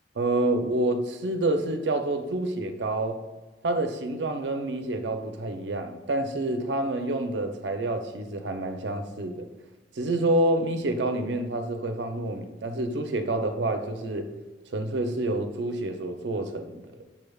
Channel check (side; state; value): both; normal; correlation 0.15